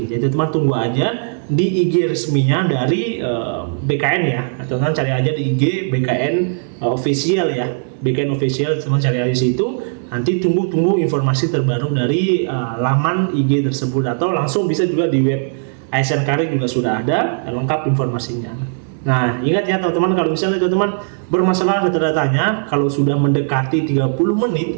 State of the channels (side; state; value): left; silent; digital silence